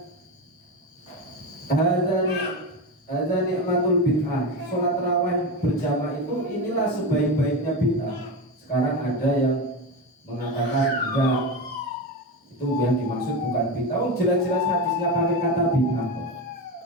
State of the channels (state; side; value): normal; both; correlation 0.19